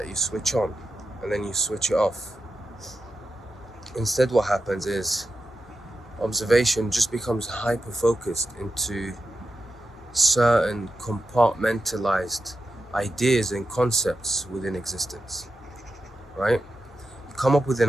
you switch on, and then you switch it off. Instead, what happens is observation just becomes hyper-focused into certain compartmentalized ideas and concepts within existence, right? You come up with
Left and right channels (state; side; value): normal; both; correlation 0.89